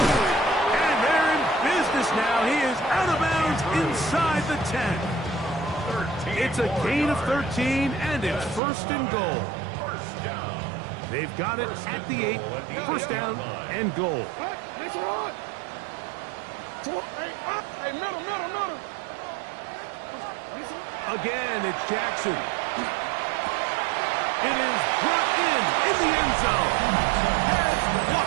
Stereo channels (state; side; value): drops out; left; at 8.6 s